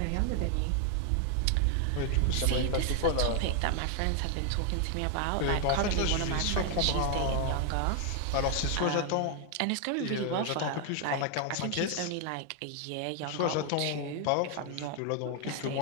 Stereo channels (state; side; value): different; both; correlation 0.00